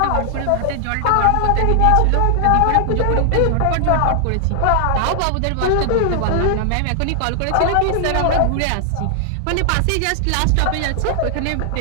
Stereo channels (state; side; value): different; both; correlation 0.00